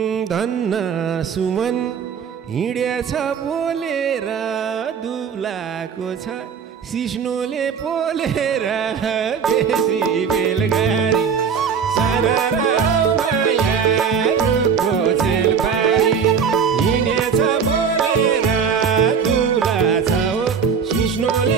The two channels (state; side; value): quieter; left; 6.7 dB